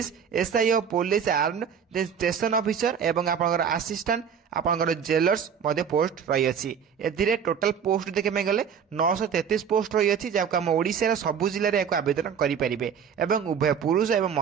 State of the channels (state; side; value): quieter; left; 7.4 dB